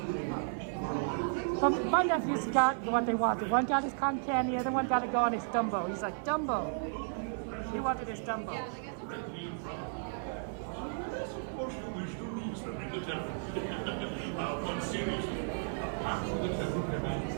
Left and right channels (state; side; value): silent; left; 55 dB below the other